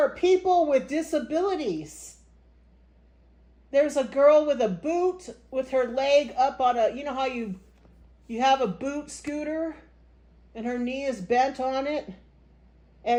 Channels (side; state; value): both; identical; correlation 1.00